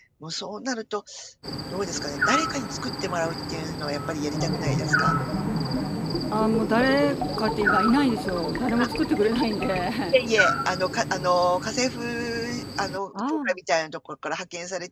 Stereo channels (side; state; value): both; identical; correlation 1.00